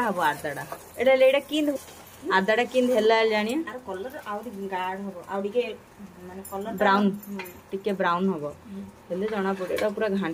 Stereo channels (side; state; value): both; identical; correlation 1.00